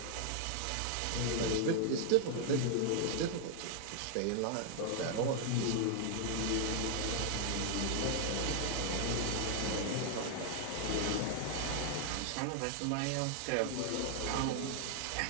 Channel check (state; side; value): different; both; correlation 0.00